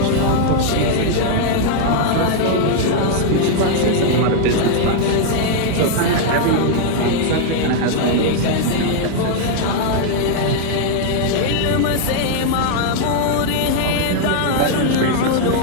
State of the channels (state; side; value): different; both; correlation -0.01